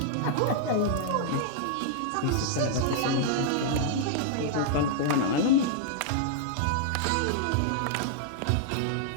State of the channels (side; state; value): both; different; correlation -0.01